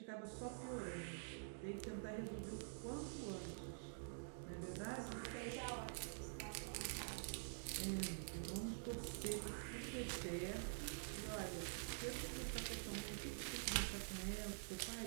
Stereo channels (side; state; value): left; silent; digital silence